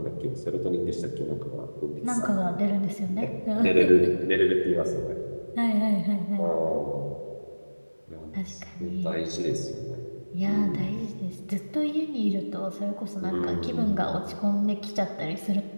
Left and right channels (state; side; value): inverted; both; correlation -1.00